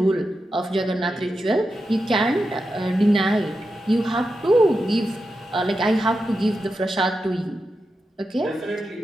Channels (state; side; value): normal; both; correlation 0.89